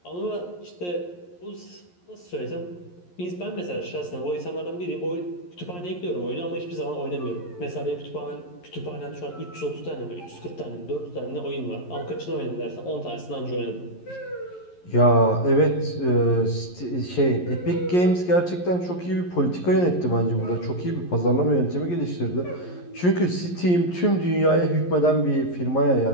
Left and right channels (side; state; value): right; late; 11 ms